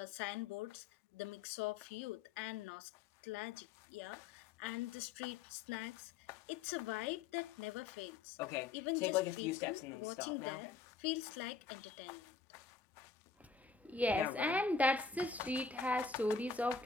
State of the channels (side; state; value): right; quieter; 4.8 dB